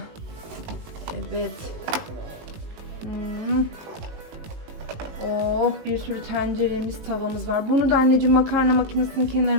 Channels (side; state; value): left; late; 18 ms